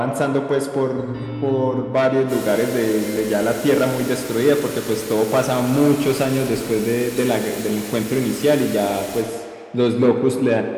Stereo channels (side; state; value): both; identical; correlation 1.00